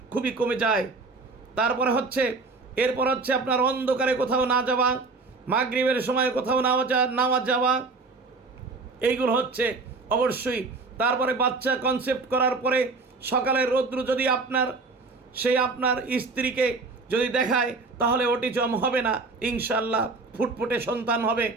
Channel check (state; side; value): quieter; left; 3.9 dB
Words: খুবই কমে যায়। এরপর হচ্ছে আপনার অন্ধকারে কোথাও না যাওয়া, মাগরিবের সময় কোথাও না যাওয়া, এইগুলো হচ্ছে অবশ্যই। তারপরে বাচ্চা কনসেপ্ট করার পরে সকালের রৌদ্র যদি আপনার স্ত্রীকে যদি দেখায়, তাহলে অটিজম হবে না, ইনশাল্লাহ ফুটফুটে সন্তান হবে।